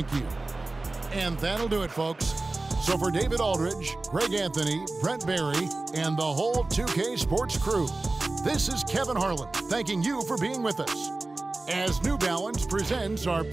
you. And that'll do it, folks. So for David Aldridge, Greg Anthony, Brent Barry, and the whole 2K Sports crew, this is Kevin Harlan thanking you for being with us as New Balance presents our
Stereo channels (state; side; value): quieter; left; 3.2 dB